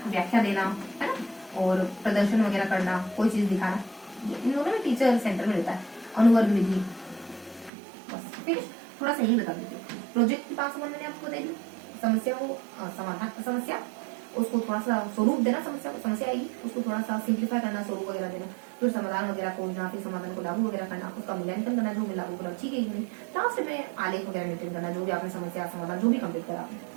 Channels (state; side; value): drops out; left; at 7.7 s